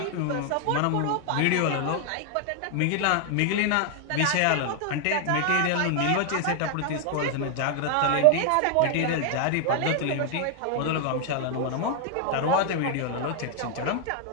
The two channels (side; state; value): both; different; correlation 0.00